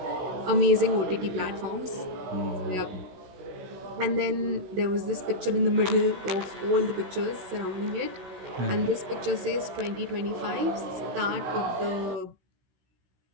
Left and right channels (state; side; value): late; left; 16 ms